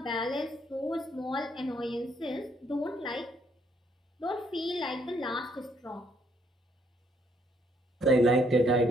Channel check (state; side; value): normal; both; correlation 0.69